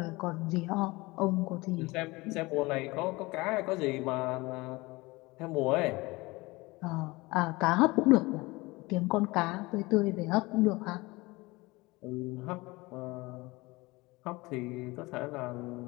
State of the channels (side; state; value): right; quieter; 22.5 dB